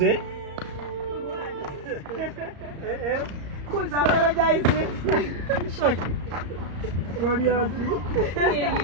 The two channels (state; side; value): late; left; 34 ms